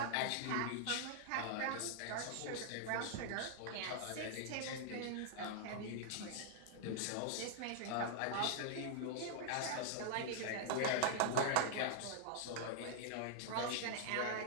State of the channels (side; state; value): both; different; correlation -0.01